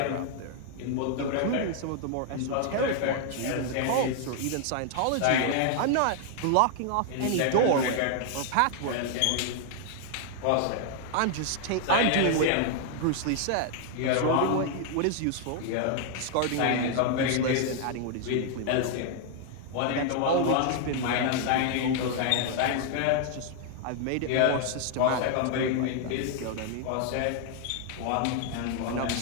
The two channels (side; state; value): both; different; correlation 0.00